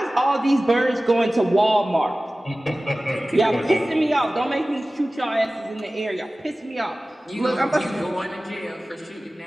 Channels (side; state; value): both; normal; correlation 0.97